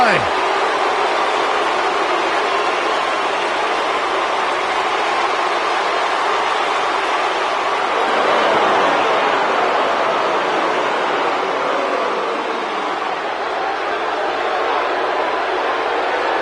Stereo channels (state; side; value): identical; both; correlation 1.00